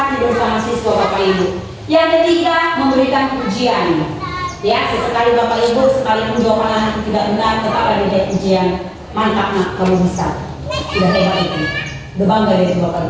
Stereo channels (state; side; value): identical; both; correlation 1.00